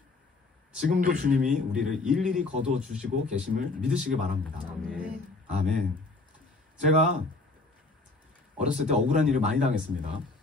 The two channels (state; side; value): quieter; right; 3.4 dB